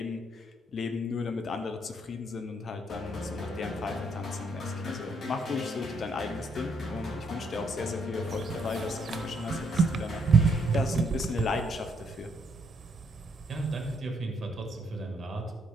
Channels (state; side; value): normal; both; correlation 0.73